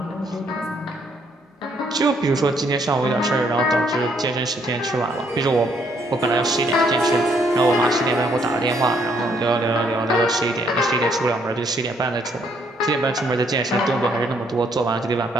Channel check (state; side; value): normal; both; correlation 0.69